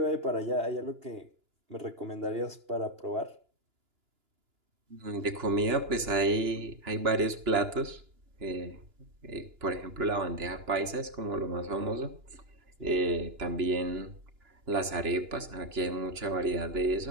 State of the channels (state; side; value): late; left; 2.9 ms